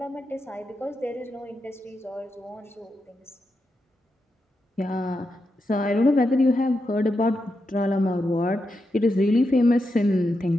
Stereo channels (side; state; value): both; normal; correlation 0.86